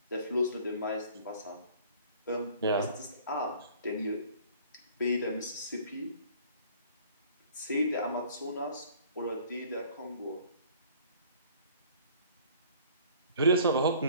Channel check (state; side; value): inverted; both; correlation -0.52